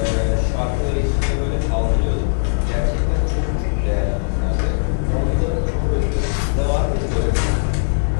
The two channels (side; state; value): right; silent; 63 dB below the other